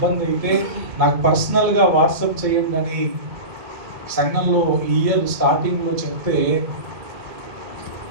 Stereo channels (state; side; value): late; left; 1.9 ms